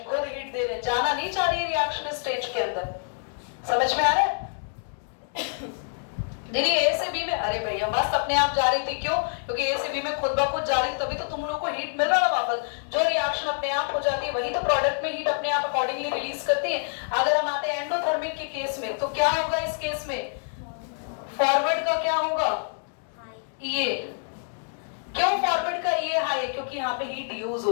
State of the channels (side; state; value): right; silent; digital silence